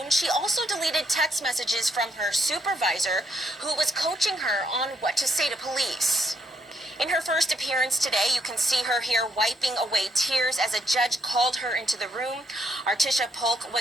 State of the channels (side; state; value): both; normal; correlation 0.74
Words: She also deleted text messages from her supervisor, who was coaching her on what to say to police. In her first appearance today, you can see her here wiping away tears as a judge called her into the room. Artissua Paulk